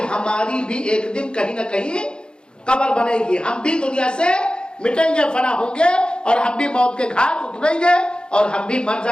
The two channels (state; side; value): late; right; 0.050 ms